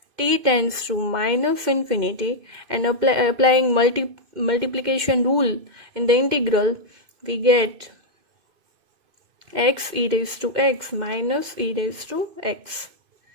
t tends to minus infinity, and applying multiplication rule in the integral, we get x e raised to x minus e raised to x,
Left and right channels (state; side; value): late; left; 2.5 ms